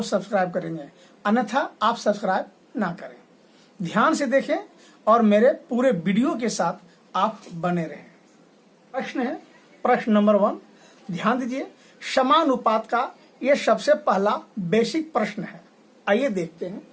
सब्सक्राइब करेंगे, अन्यथा आप सब्सक्राइब ना करें। ध्यान से देखें और मेरे पूरे वीडियो के साथ आप बने रहें। प्रश्न है, प्रश्न नंबर 1। ध्यान दीजिए, समानुपात का यह सबसे पहला बेसिक प्रश्न है। आइए देखते हैं।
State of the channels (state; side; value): identical; both; correlation 1.00